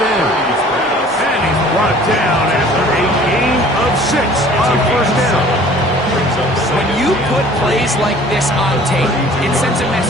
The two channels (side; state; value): both; normal; correlation 0.50